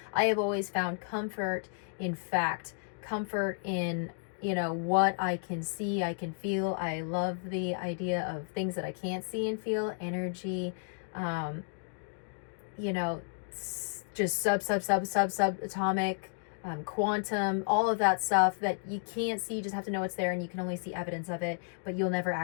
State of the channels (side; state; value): right; silent; digital silence